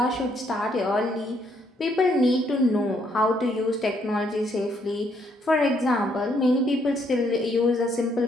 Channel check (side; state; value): both; normal; correlation 0.71